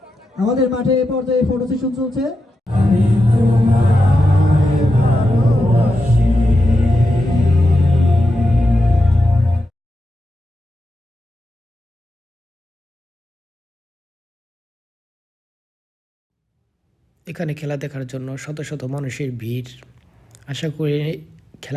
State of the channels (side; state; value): both; normal; correlation 0.88